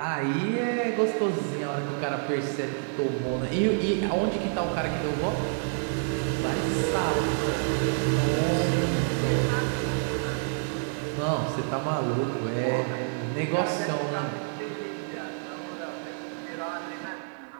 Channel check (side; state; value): left; silent; digital silence